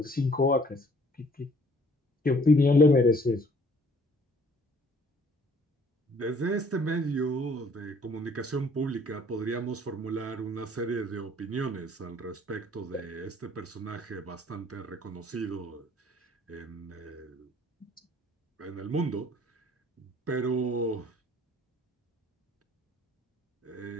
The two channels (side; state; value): both; normal; correlation 0.58